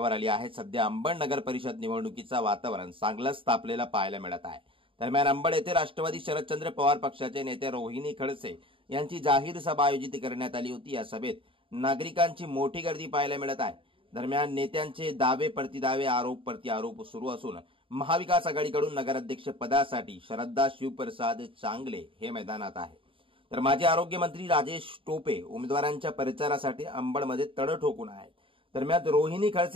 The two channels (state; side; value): late; left; 0.25 ms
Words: आली आहे। सध्या अंबड नगर परिषद निवडणुकीचा वातावरण चांगलंच तापलेला पाहायला मिळत आहे। दरम्यान अंबड येथे राष्ट्रवादी शरदचंद्र पवार पक्षाचे नेते रोहिणी खडसे यांची जाहीर सभा आयोजित करण्यात आली होती। या सभेत नागरिकांची मोठी गर्दी पाहायला मिळत आहे। दरम्यान नेत्यांचे दावे प्रतिदावे आरोप प्रत्यारोप सुरू असून महाविकास आघाडीकडून नगराध्यक्ष पदासाठी श्रद्धा शिवप्रसाद चांगले हे मैदानात आहे, तर माजी आरोग्य मंत्री राजेश टोपे उमेदवारांच्या प्रचारासाठी अंबडमध्ये तड ठोकून आहेत। दरम्यान रोहिणी